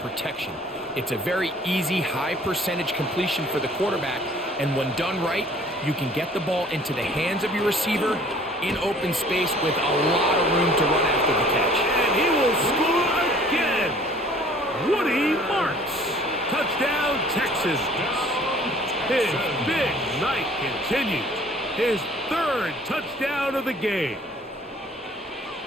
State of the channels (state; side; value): normal; both; correlation 0.53